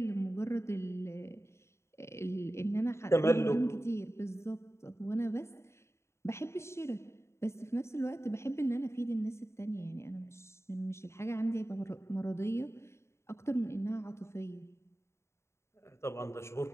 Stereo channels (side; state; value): right; late; 0.13 ms